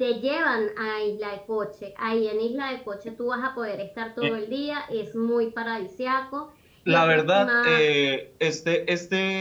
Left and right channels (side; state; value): both; identical; correlation 1.00